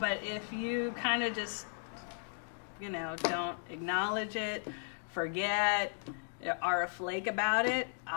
if you kind of just, don't acknowledge it, forget, are a flake about it,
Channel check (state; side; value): silent; right; digital silence